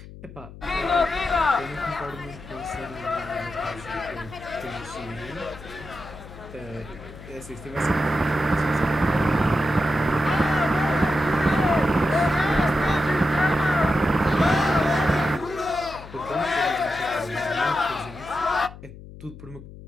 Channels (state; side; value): noise; left; hum, 16 dB below the sound